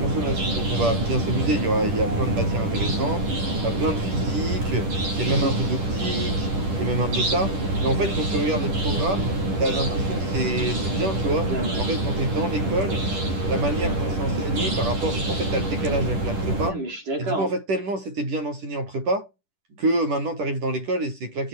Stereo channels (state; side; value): late; left; 10 ms